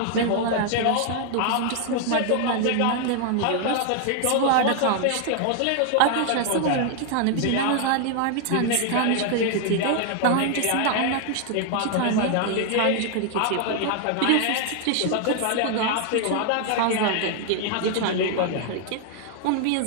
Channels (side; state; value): both; different; correlation 0.00